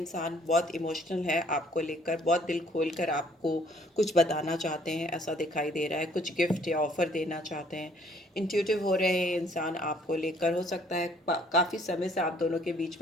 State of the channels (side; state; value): both; normal; correlation 0.61